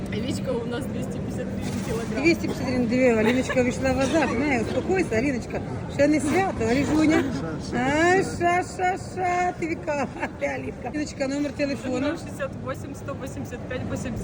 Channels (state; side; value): identical; both; correlation 1.00